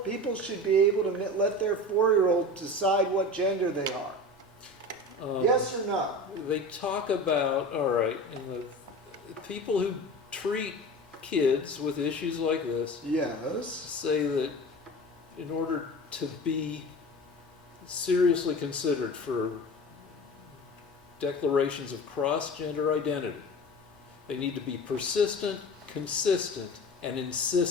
people should be able to let their 4-year-old decide what gender they are? Yes or no? They talk about, all right, and the people who treat kids with issues like this Yes. say that in order to be seriously considered for declarations of cross-gender identity, they need to be persistent, consistent, and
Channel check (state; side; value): normal; both; correlation 0.33